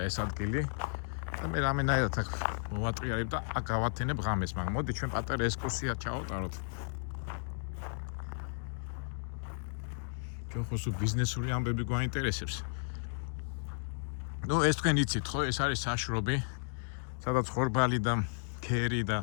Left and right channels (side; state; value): right; silent; digital silence